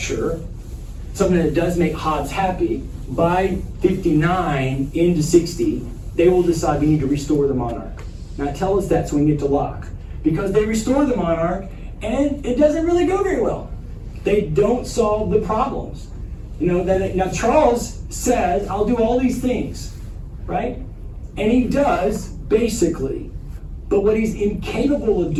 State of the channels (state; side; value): identical; both; correlation 1.00